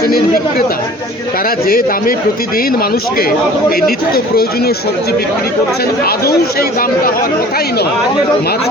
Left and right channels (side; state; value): both; normal; correlation 0.47